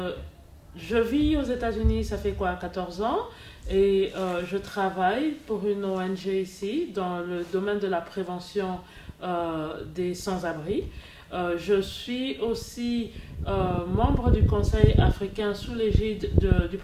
vis aux États-Unis, ça fait 14 ans, et je travaille pour une ONG ici dans le domaine de la prévention des sans-abri. Je suis aussi membre du Conseil africain sous l'égide du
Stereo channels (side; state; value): both; identical; correlation 1.00